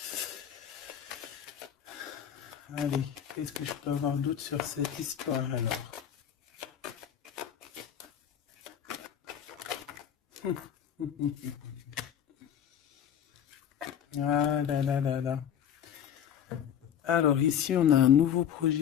Allez, qu'est-ce que je peux avoir d'autre sur cette histoire alors? Ah là là là là. Alors ici, on a un nouveau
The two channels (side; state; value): right; quieter; 9.2 dB